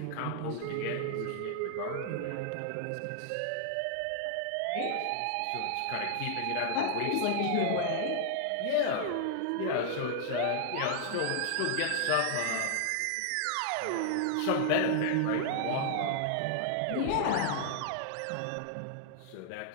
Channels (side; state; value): both; different; correlation -0.01